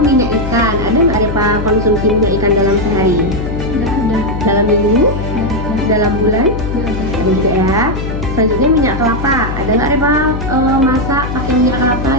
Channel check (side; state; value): left; noise; hum, 5 dB below the sound